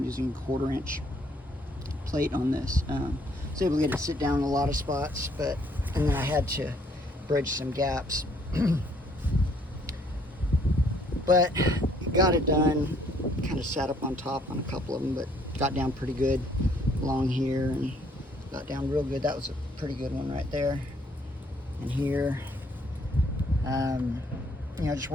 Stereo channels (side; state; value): both; normal; correlation 0.65